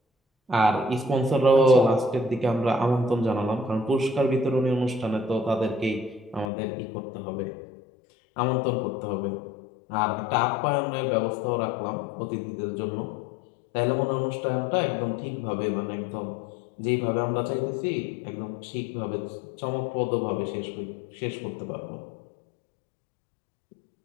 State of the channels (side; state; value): right; drops out; at 6.5 s